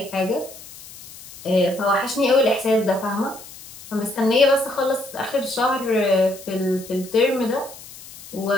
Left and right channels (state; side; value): noise; left; hiss, 17 dB below the sound